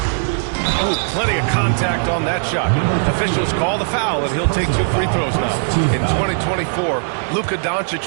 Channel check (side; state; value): left; silent; digital silence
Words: Oh, plenty of contact on that shot. Officials call the foul, and he'll take 2 free throws now. In 2024, Luka